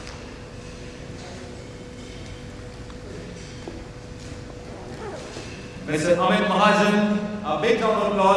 Mr. Amit Mahajan, a big round of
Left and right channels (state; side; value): identical; both; correlation 1.00